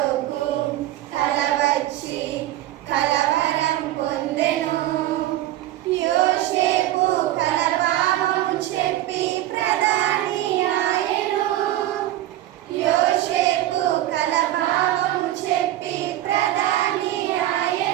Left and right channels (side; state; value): left; quieter; 14.3 dB